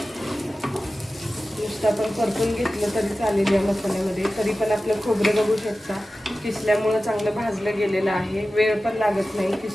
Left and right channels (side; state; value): both; normal; correlation 0.95